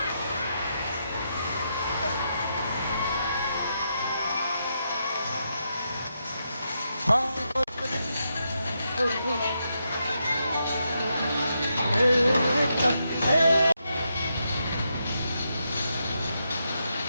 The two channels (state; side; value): inverted; both; correlation -0.83